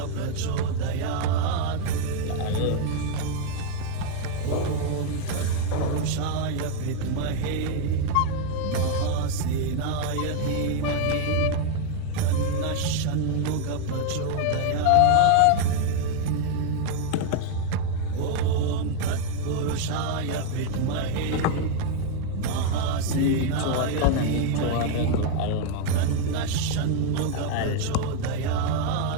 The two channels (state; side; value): different; both; correlation 0.00